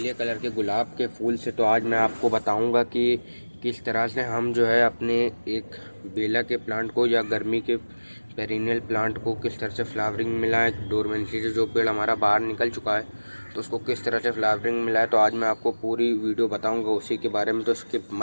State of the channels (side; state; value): both; inverted; correlation -1.00